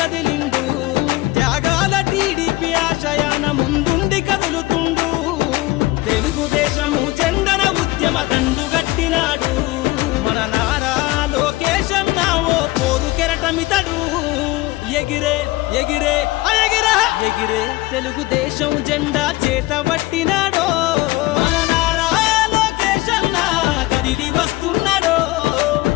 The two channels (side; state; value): right; quieter; 19.7 dB